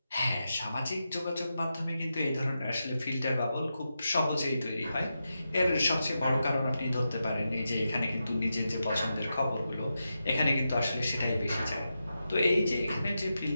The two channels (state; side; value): inverted; both; correlation -0.89